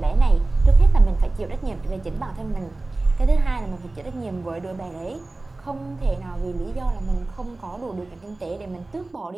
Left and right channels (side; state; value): left; quieter; 3.1 dB